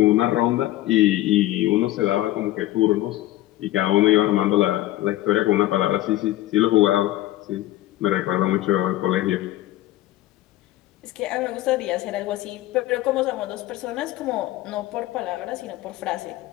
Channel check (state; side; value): quieter; right; 15.6 dB